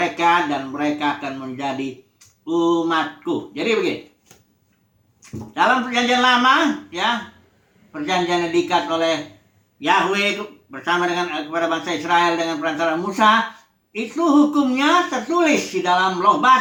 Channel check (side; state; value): both; identical; correlation 1.00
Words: dan mereka akan menjadi umatku. Jadi begini, dalam perjanjian lama ya, perjanjian yang diikat oleh Yahweh bersama dengan kepada bangsa Israel dengan perantara Musa, itu hukumnya tertulis di dalam loh